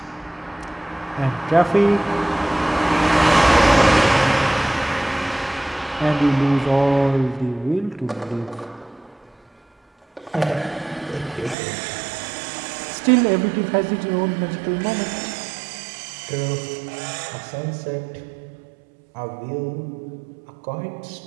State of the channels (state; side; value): drops out; left; at 11.6 s